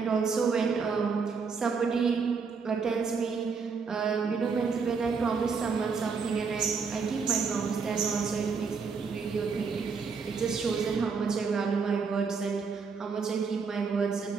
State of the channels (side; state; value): left; quieter; 5.3 dB